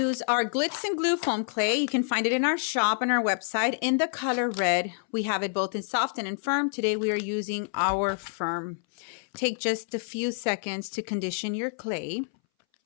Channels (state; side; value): silent; right; 60 dB below the other